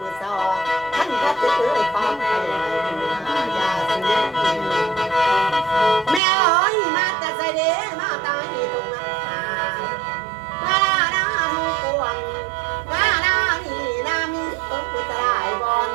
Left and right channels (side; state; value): left; drops out; at 6.2 s